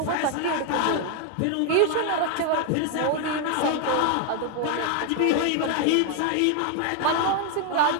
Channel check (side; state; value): both; different; correlation 0.00